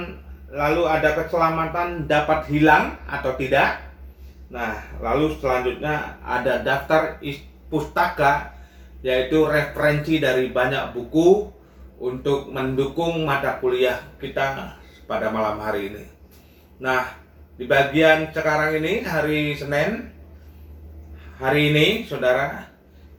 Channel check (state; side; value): identical; both; correlation 1.00